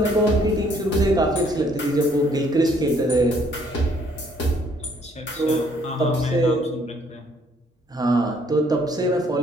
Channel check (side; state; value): both; normal; correlation 0.64